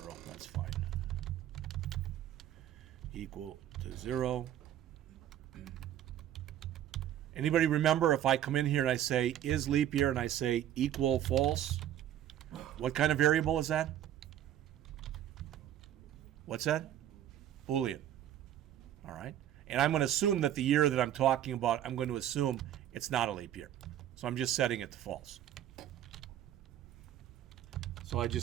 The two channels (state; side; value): quieter; left; 11.3 dB